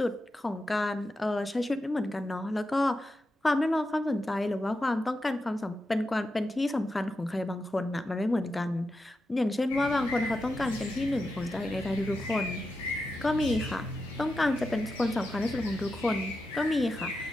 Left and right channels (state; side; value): normal; both; correlation 0.89